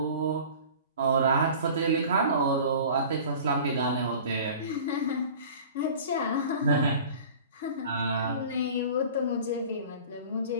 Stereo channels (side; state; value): both; inverted; correlation -0.42